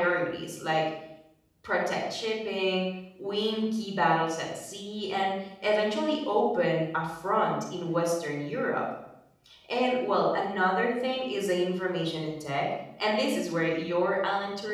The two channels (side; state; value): both; identical; correlation 1.00